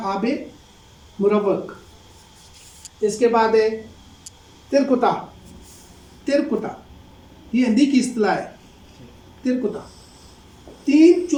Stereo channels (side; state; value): both; identical; correlation 1.00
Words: आबे मुरव्वक। इसके बाद है तिरकुता। तिरकुता ये हिंदी की इस्तिलाह है। तिरकुता 3